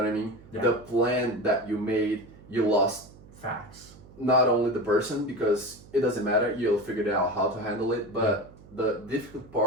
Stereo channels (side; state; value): right; noise; hum, 22 dB below the sound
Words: I mean? Yeah. The plan that you made, you lost. Facts. Not only the person, because it doesn't matter, you'll figure out how to handle it, but the difficult